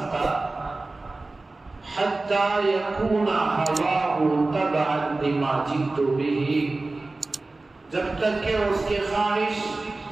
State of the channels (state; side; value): quieter; left; 3.2 dB